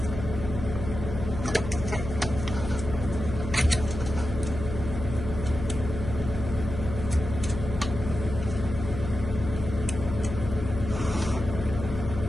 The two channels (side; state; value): left; noise; hum, 7 dB below the sound